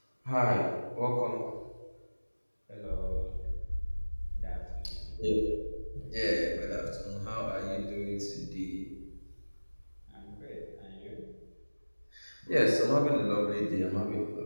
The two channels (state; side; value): inverted; both; correlation -1.00